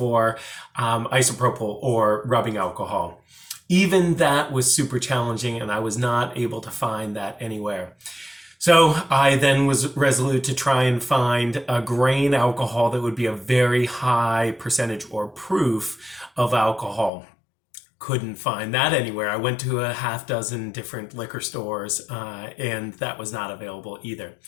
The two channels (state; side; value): drops out; right; at 17.1 s